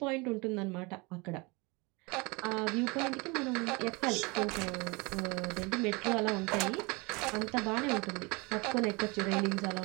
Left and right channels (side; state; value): left; quieter; 27.1 dB